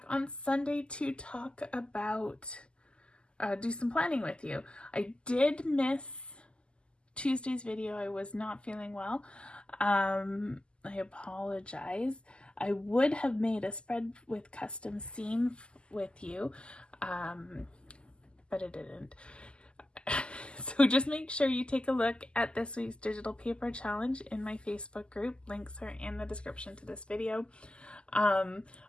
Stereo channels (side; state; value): right; late; 0.050 ms